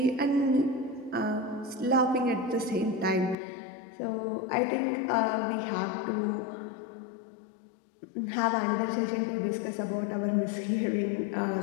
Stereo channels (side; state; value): right; drops out; at 3.4 s